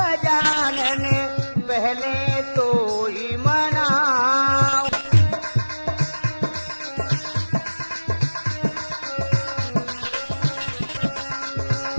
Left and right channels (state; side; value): inverted; both; correlation -1.00